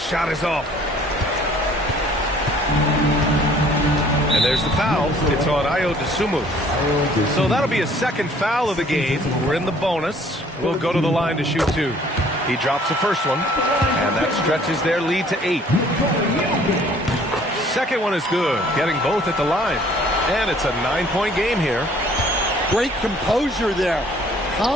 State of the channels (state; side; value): normal; both; correlation 0.56